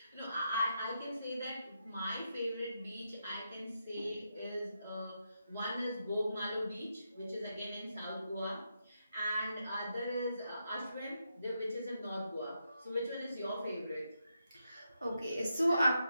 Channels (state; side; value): inverted; both; correlation -0.84